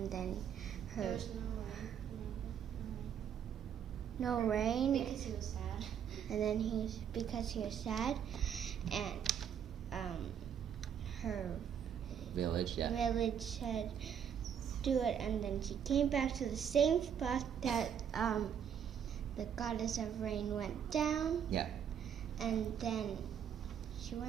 her was no rain, because he was sad. and then because he was sad, and her Village, yeah. village said do it, and then she came back to the same spot that the goddess of rain went down. Yeah. And then she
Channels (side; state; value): left; quieter; 8.4 dB